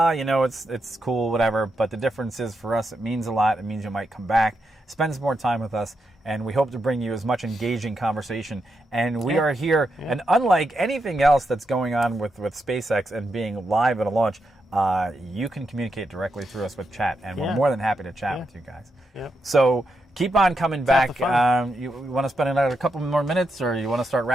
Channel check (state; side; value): normal; both; correlation 0.84